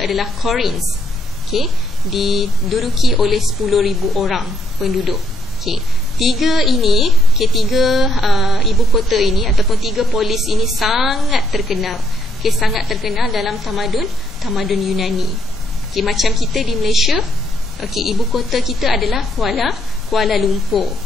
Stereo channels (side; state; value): both; normal; correlation 0.73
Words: adalah Corinth, okay, diduduki oleh 10,000 orang penduduk. Okay, 3 ini, okay, 3 ibu kota ini ataupun 3 polis ini sangat terkenal, okay, sangat terkenal dalam tamadun Yunani. Okay, macam kita di Malaysia, okay, ibu kota kita adalah Kuala Lumpur.